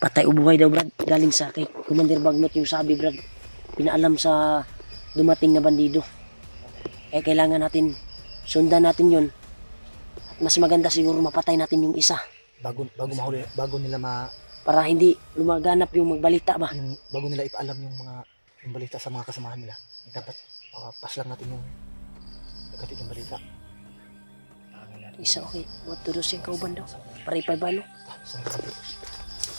Patay o buhay daw Brad. Galing sa kay Commander Bagnot yung sabi Brad. Pinaalam sa dumating na bandido. Kaya kailangan natin sundan natin yun. At mas maganda siguro mapatay natin yung isa. Bago mahuli, bago nila para hindi lumaganap yung magbalita ba. Yung bago nila ipaalam yung balita sa mga kasamahan nila, dapat pass lang natin yung nagkatid yung balita. Isa okay, buat tulos yung kauban daw. Paripay ba no? Saan ka natin?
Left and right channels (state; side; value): inverted; both; correlation -1.00